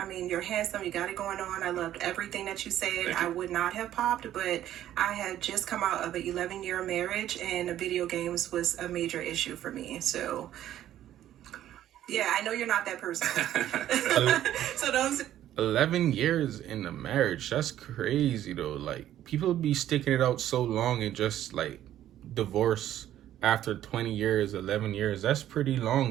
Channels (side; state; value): left; quieter; 12.2 dB